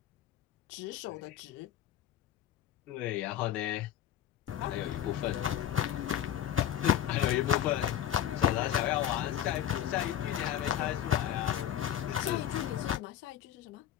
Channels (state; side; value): quieter; right; 10.6 dB